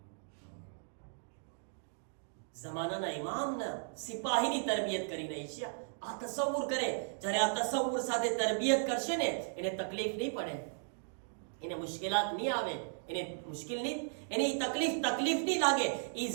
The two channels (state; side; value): silent; left; digital silence